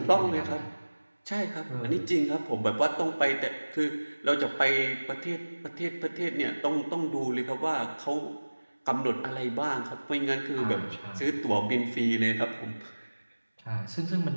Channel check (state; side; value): inverted; both; correlation -1.00